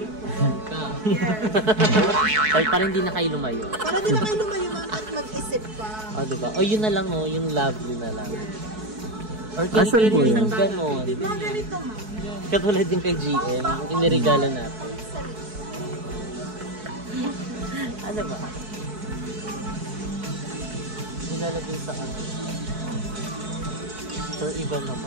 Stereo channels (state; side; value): late; left; 4.6 ms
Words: Ka. Yes. Ay, parang hindi na kayo lumayo. Para di na kayo lumayo ma'am at mag-isip pa. O, diba? O, yun na lang, oh. Yung lovely na lang. Or Asan po kini-carry yun? ng ganon. Mga ganito ma'am. Katulad yung kay GM, yung inirigala natin. Ano ba? Nilalagay sa ano. Or iba